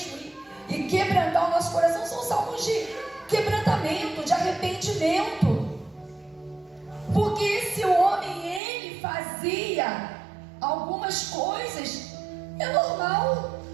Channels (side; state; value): left; drops out; at 8.6 s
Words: e quebrantar o nosso coração, são salmos de quebrantamento, de arrependimento. Porque esse homem, ele fazia algumas coisas, é normal,